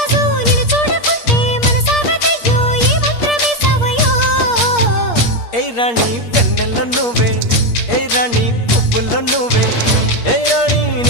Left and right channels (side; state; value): right; late; 8.5 ms